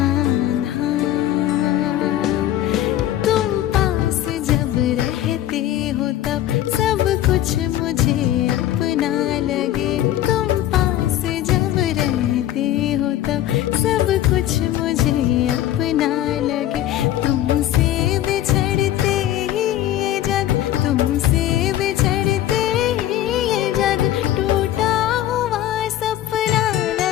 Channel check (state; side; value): quieter; right; 12.8 dB